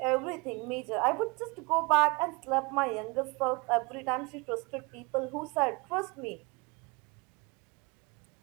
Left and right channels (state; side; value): quieter; left; 27.7 dB